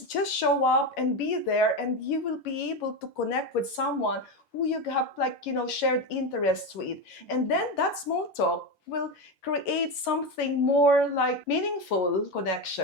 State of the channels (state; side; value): late; right; 11 ms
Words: show up and be there, and you will be able to connect with someone who you have shared interests with. And then that small talk will create something more meaningful